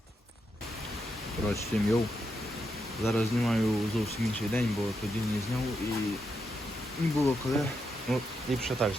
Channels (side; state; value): both; normal; correlation 0.83